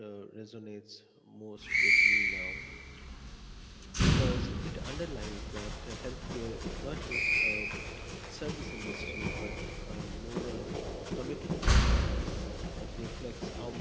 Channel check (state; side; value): identical; both; correlation 1.00